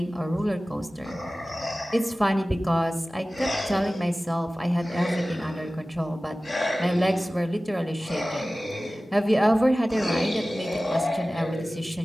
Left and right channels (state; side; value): normal; both; correlation 0.97